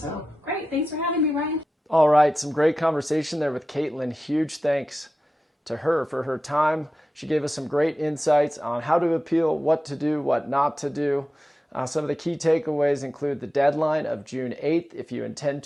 town. Great. Thanks for having me, Ryan. All right, some great conversation there with Caitlyn. Huge thanks to her for her time. She gave us some great insights on how to appeal, what to do, what not to do. Some of the key takeaways include the deadline of June 8th. If you intend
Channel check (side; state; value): both; normal; correlation 0.93